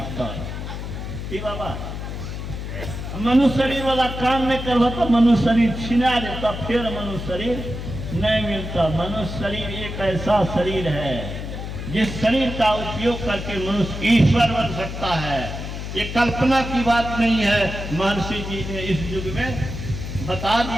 कर। कि बाबा मनुष्य शरीर वाला काम नहीं करवा तो मनुष्य शरीर छिना देता, फिर मनुष्य शरीर नहीं मिलता। मनुष्य शरीर एक ऐसा शरीर है जिस शरीर का उपयोग करके मनुष्य ईश्वर बन सकता है। ये कल्पना की बात नहीं है। महर्षि जी ने इस युग में बता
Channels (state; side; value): noise; left; hum, 7 dB below the sound